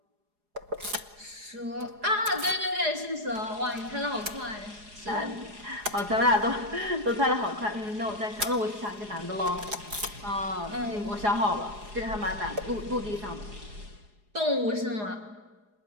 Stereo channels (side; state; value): left; late; 4.8 ms